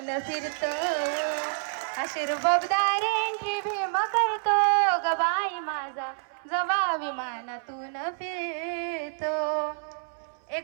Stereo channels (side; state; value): left; silent; 59 dB below the other